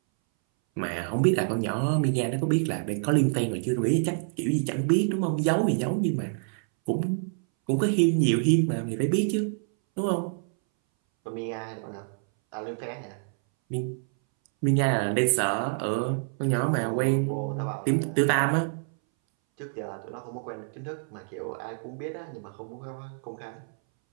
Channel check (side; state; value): left; silent; 60 dB below the other